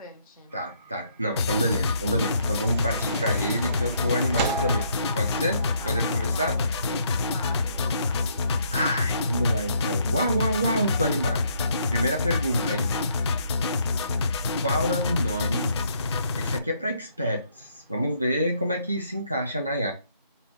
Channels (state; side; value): inverted; both; correlation -0.70